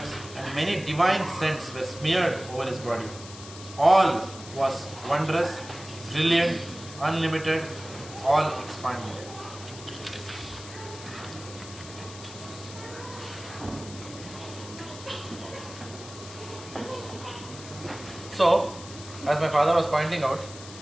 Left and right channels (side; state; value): left; noise; hiss, 15 dB below the sound